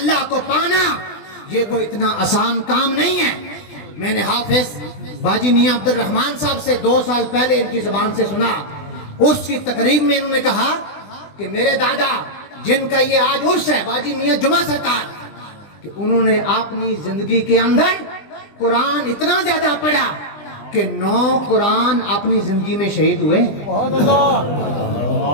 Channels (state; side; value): late; right; 20 ms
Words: کو پانا یہ کوئی اتنا آسان کام نہیں ہے۔ میں نے حافظ باجی میاں عبد الرحمن صاحب سے 2 سال پہلے ان کی زبان سے سنا، اس کی تقریب میں انہوں نے کہا کہ میرے دادا جن کا یہ آج عرس ہے، باجی میاں جمعہ سرکار، کہ انہوں نے اپنی زندگی کے اندر قرآن اتنا زیادہ پڑھا کہ 9 قرآن اپنی زندگی میں شہید ہوئے۔